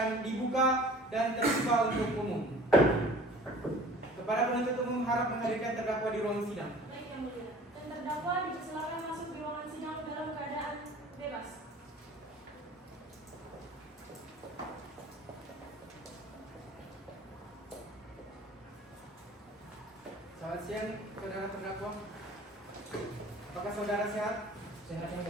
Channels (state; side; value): normal; both; correlation 0.46